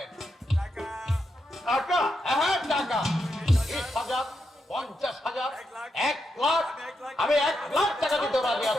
টাকা? হ্যাঁ টাকা 20,000, 50,000, 1 লাখ। আমি 1 লাখ টাকা দিতে রাজি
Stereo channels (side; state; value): both; normal; correlation 0.83